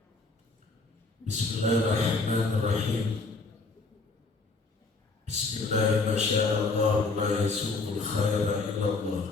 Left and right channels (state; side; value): quieter; right; 3.8 dB